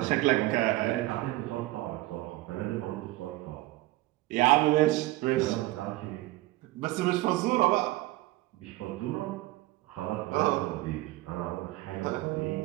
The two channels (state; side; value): quieter; left; 18.4 dB